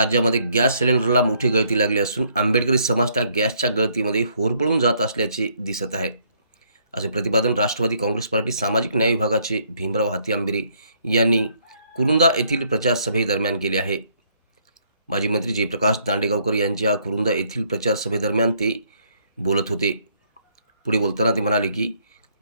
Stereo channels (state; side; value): inverted; both; correlation -0.68